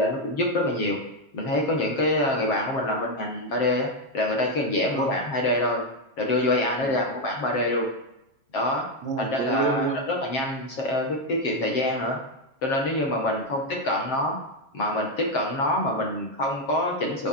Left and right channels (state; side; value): late; right; 7.5 ms